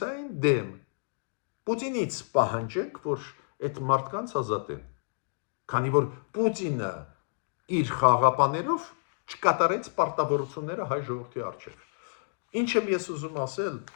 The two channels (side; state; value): right; silent; digital silence